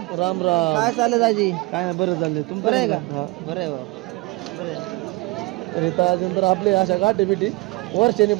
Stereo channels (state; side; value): quieter; left; 23.5 dB